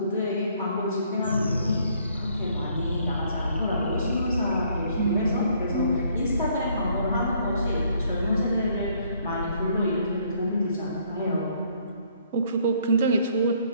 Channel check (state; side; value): inverted; both; correlation -0.65